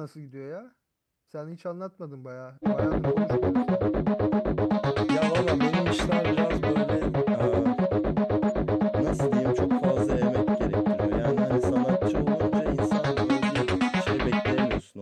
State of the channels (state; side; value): identical; both; correlation 1.00